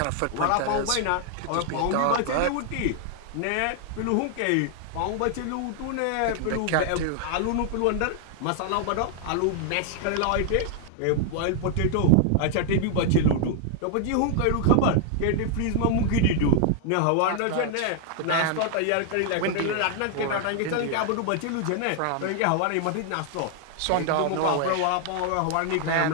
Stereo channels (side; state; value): both; different; correlation 0.00